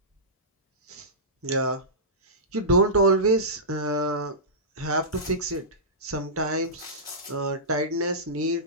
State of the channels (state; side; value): normal; both; correlation -0.17